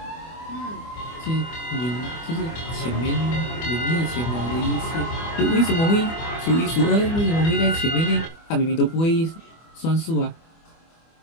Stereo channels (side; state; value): right; late; 24 ms